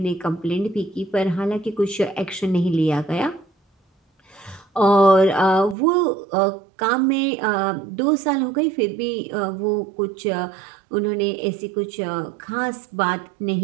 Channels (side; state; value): left; drops out; at 5.8 s